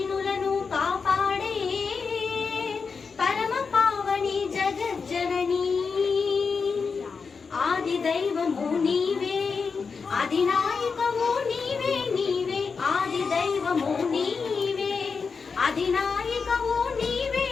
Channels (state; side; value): quieter; right; 5.2 dB